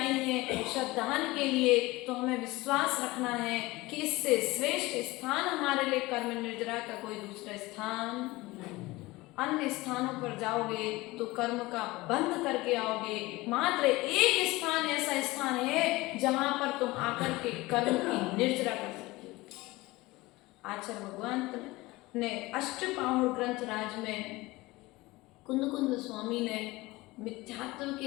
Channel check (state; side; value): quieter; right; 20.7 dB